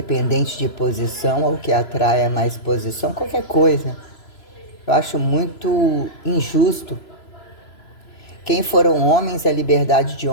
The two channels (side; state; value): right; late; 3.0 ms